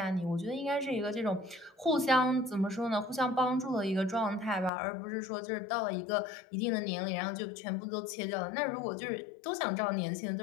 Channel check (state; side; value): drops out; right; at 4.7 s